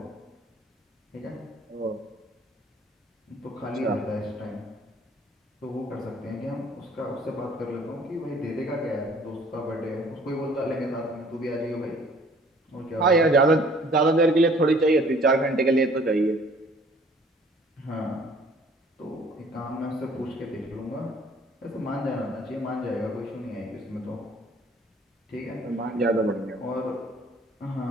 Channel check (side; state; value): both; normal; correlation 0.55